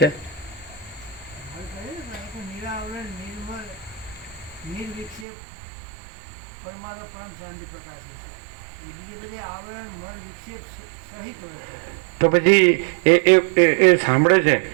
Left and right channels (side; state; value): left; drops out; at 5.2 s